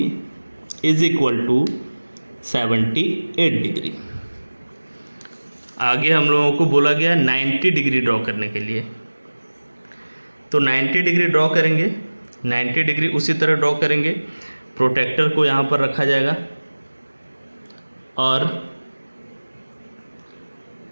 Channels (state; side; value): inverted; both; correlation -1.00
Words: is equal to 78 degree. आगे हम लोगों को बोला गया 90 डिग्री ड्रॉ करने के लिए, तो 90 डिग्री ड्रॉ करेंगे। 90 डिग्री उसी तरह ड्रॉ करेंगे, प्रोटेक्टर को यहाँ पर रखा जाएगा और